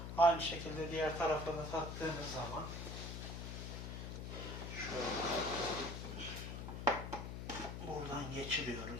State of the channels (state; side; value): noise; left; hum, 6 dB below the sound